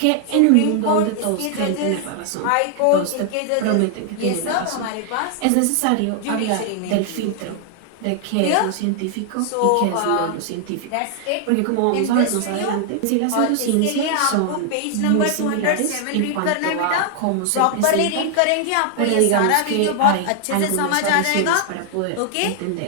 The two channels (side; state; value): both; different; correlation 0.00